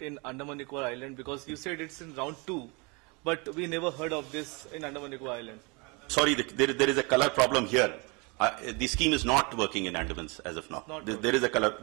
in Andaman Nicobar Island? Because you said it's in round 2, but we never heard of this in Andaman Nicobar Island. Sorry, there is a color problem here. The scheme is not working in Andamans as of now. There is a color,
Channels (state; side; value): quieter; left; 29.5 dB